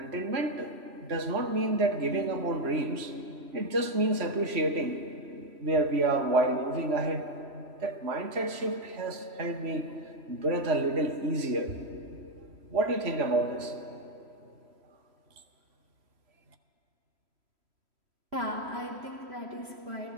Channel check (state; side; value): late; left; 3.1 ms